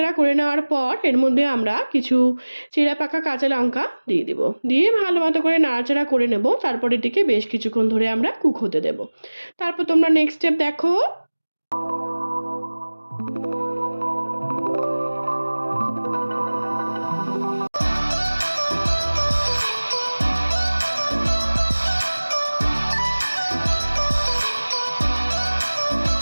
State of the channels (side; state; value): both; inverted; correlation -1.00